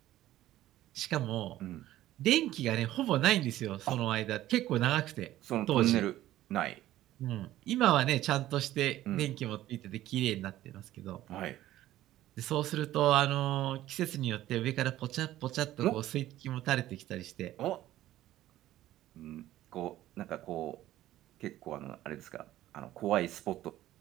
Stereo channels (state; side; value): quieter; left; 14.3 dB